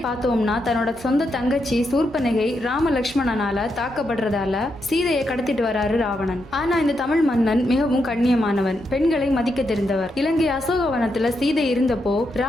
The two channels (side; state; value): both; normal; correlation 0.82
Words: பார்த்தோம்னா, தன்னோட சொந்த தங்கச்சி சூர்பனகை ராம லக்ஷ்மணனால தாக்கப்படுறதால சீதையை கடத்திட்டு வராரு ராவணன். ஆனா இந்த தமிழ் மன்னன் மிகவும் கண்ணியமான பெண்களை மதிக்க தெரிந்தவர். இலங்கை அசோகவனத்துல சீதை இருந்தப்போ